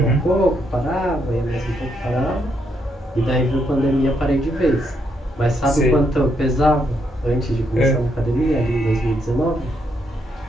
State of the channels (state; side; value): normal; both; correlation 0.77